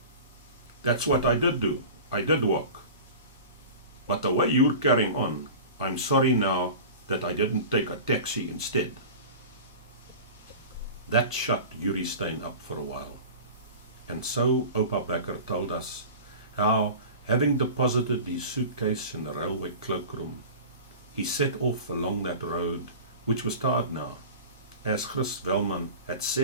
That's what I did do. I did walk. But the way you're carrying on, I'm sorry now that I didn't take a taxi instead. That shut Yuri Stein up for a while. And so Opa Becker told us how, having deposited his suitcase in the railway cloakroom, he set off along that road, which was tarred now, as Chris Velman had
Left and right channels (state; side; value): inverted; both; correlation -0.36